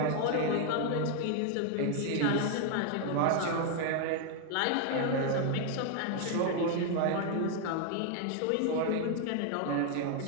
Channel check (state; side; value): different; both; correlation 0.01